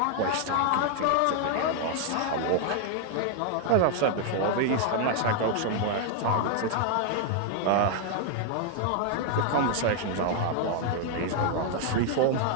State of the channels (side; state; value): both; different; correlation 0.00